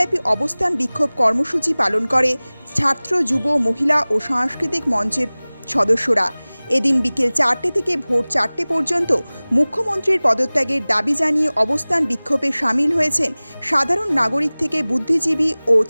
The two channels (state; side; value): inverted; both; correlation -1.00